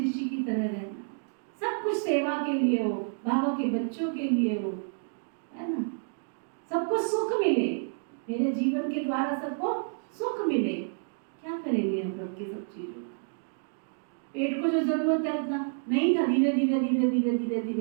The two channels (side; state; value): left; silent; digital silence